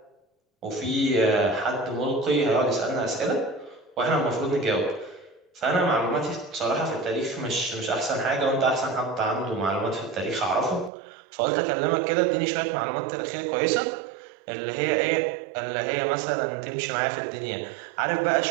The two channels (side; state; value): left; drops out; at 10.9 s